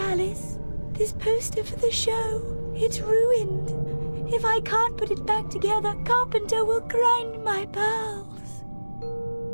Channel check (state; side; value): inverted; both; correlation -1.00